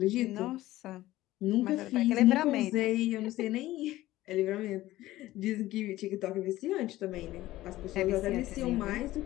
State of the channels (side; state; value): right; quieter; 16.1 dB